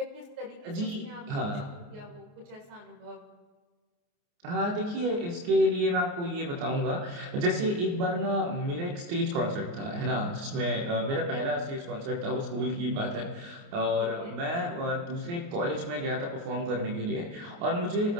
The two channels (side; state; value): left; late; 29 ms